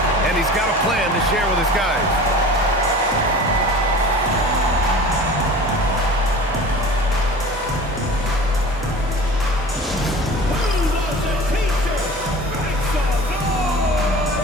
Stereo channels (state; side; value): normal; both; correlation 0.39